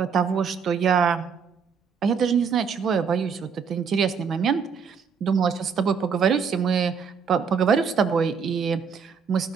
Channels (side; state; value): left; quieter; 6.3 dB